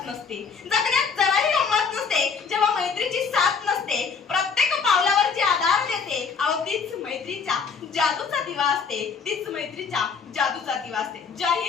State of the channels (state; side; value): quieter; right; 5.7 dB